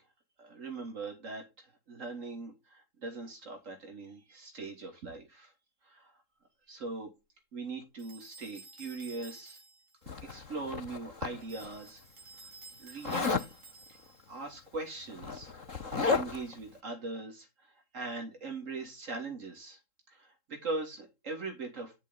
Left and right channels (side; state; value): left; late; 3.8 ms